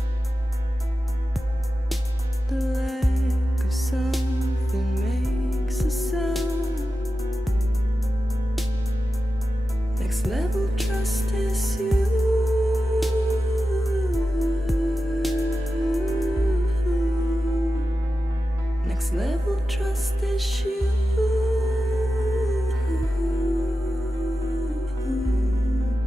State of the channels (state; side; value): normal; both; correlation 0.92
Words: The lack of something makes a sound. Next level trust is you. Next level trust is you.